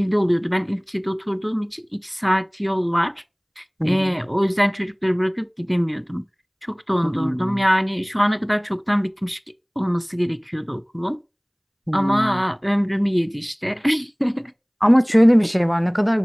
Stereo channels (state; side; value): identical; both; correlation 1.00